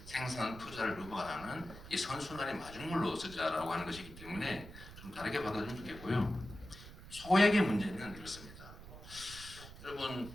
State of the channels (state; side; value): noise; right; rumble, 15 dB below the sound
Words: 생산 투자를 유발하는 이 선순환의 마중물로 쓰자라고 하는 것이기 때문에 좀 다르게 받아주면 좋겠고요. 소액의 문제는 이렇습니다.